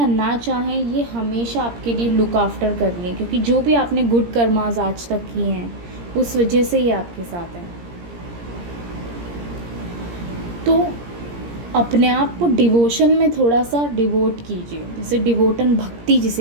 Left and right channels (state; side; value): late; left; 17 ms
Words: ना चाहें, ये हमेशा आपके लिए लुक आफ्टर कर रही है, क्योंकि जो भी आपने गुड कर्मास आज तक किए हैं उस वजह से ये आपके साथ है। तो अपने आप को डिवोशन में थोड़ा सा डिवोट कीजिए, जैसे डिवोटन भक्ति